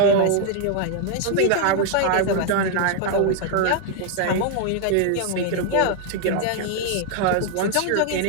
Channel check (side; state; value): both; different; correlation 0.00